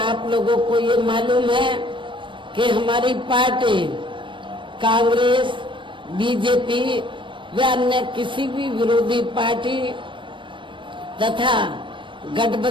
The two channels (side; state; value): left; late; 0.24 ms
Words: लोगों को ये मालूम है कि हमारी पार्टी कांग्रेस, बीजेपी व अन्य किसी भी विरोधी पार्टी तथा